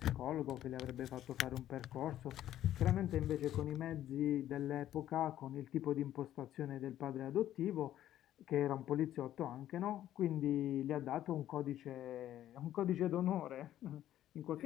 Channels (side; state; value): right; quieter; 12.3 dB